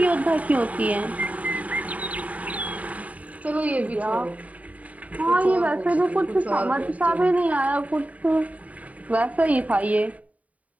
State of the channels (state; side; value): late; left; 0.069 ms